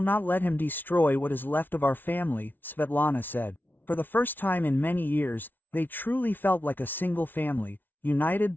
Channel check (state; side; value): late; right; 0.090 ms